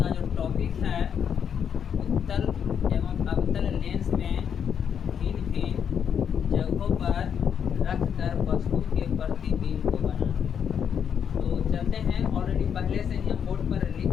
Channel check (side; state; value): right; quieter; 7.9 dB